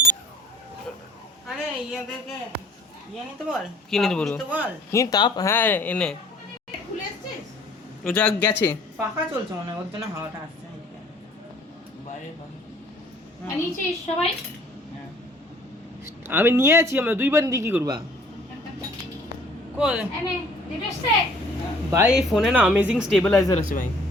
আরে ইয়াদেরকে নিতে বল। কি নিতে বলবো? কি তাপ? হ্যাঁ এনে খুলে এসেছিস? ও যা গেছে পাখা চলছে মনে হয়, ওর জন্য হাওয়াটা আসছে বাইরে। নিয়েছিস সবাই? আমি নিয়ে আছি, আমরা দুইবার দিয়ে কি করবা? ভাই এই ফোনে না অ্যামেজিং স্টেবিলাইজার আছে ভাই,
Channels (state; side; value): normal; both; correlation 0.55